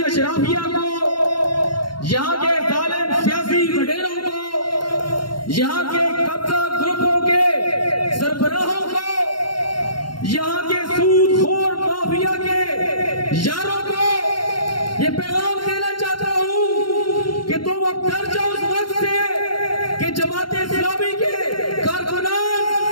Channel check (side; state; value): right; late; 0.72 ms